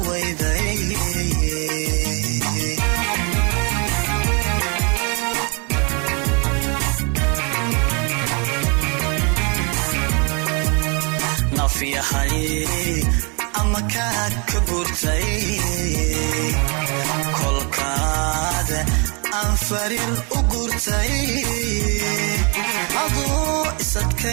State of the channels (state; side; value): quieter; left; 33.5 dB